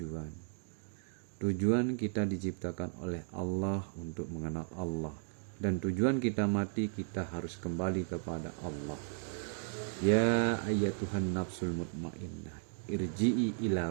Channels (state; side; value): silent; left; digital silence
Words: Tujuan kita diciptakan oleh Allah untuk mengenal Allah, dan tujuan kita mati kita harus kembali kepada Allah. Ya ayyatuhan nafsul mutmainnah, irji'i ila